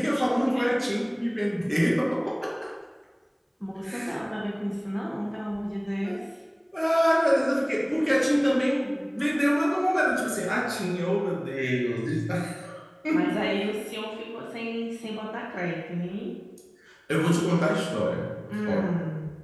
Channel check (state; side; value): identical; both; correlation 1.00